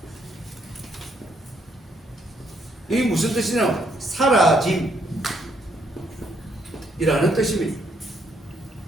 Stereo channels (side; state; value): both; normal; correlation 0.72